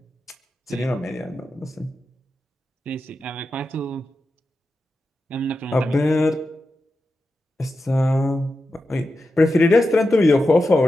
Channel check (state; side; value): normal; both; correlation 0.90